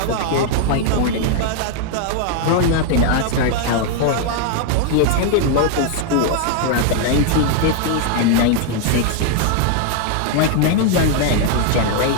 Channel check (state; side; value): different; both; correlation 0.00